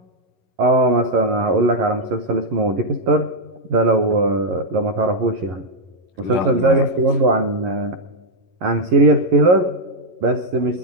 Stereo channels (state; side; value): late; left; 10 ms